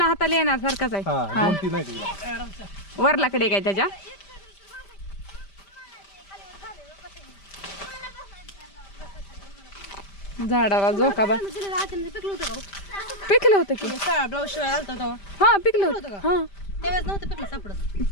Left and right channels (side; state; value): right; late; 5.1 ms